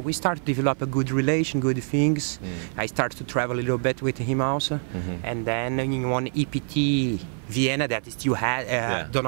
we start to develop a good relation, good things. I start to travel a little bit with him also. And then in one EPT Vienna that still do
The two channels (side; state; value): left; silent; 57 dB below the other